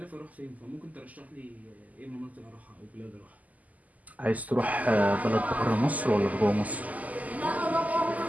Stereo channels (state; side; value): late; left; 0.076 ms